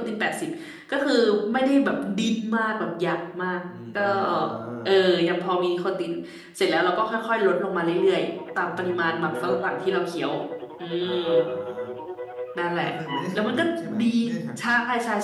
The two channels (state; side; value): identical; both; correlation 1.00